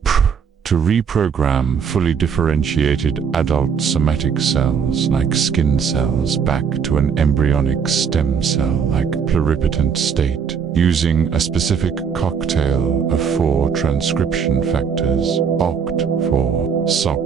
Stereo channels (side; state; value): left; quieter; 6.7 dB